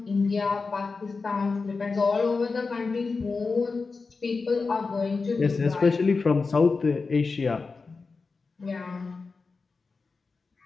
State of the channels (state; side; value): quieter; right; 4.3 dB